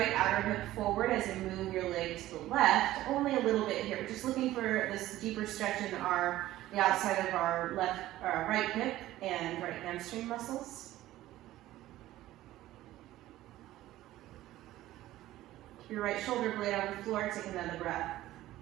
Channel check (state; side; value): quieter; left; 15.2 dB